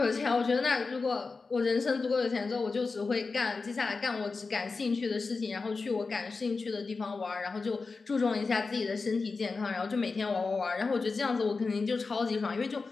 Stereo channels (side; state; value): right; quieter; 4.2 dB